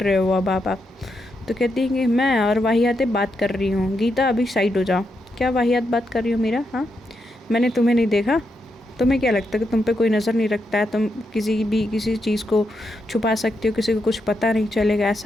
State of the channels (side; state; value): both; normal; correlation 0.83